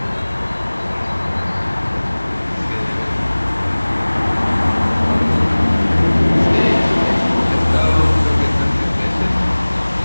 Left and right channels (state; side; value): inverted; both; correlation -1.00